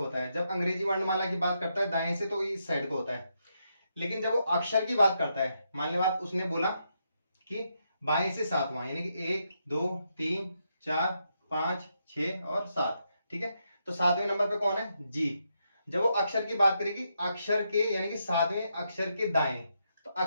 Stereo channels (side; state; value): both; inverted; correlation -0.81